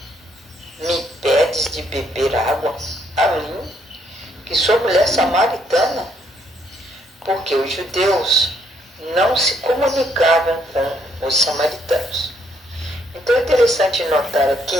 me pedes de beber água a mim, que sou mulher samaritana? Porque os judeus não se comunicavam com os samaritanos. Então é interessante notar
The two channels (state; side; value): normal; both; correlation 0.71